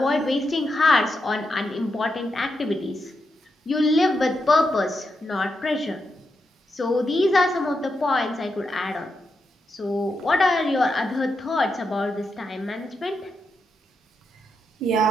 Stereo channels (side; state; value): both; normal; correlation 0.85